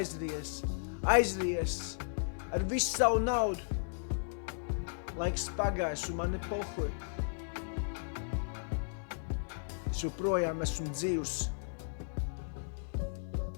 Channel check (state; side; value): silent; right; digital silence